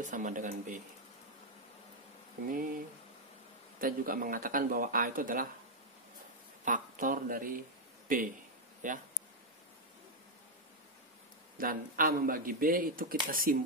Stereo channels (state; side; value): normal; both; correlation 0.01